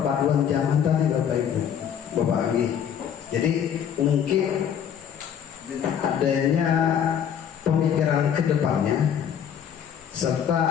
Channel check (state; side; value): quieter; right; 8.6 dB